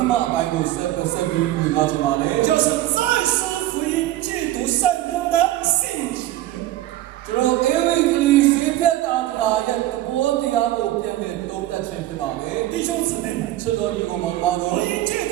မအပိုင်းကိုဆက်ပြီးဝင်လာချင်ပါလေ 就是再思福音戒毒圣功的性质。 ကျွန်တော်အေဝံဂေလိစေဖြတ်တာရဲ့သဘောတရားကိုပြန်လဲသုံးသပ်ခြင်းဖြစ်ပါလေ 弟兄姊妹们， ချစ်တော်ညီကောင်မောင်ပါလို့ 福音戒毒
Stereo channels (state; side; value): quieter; left; 14.7 dB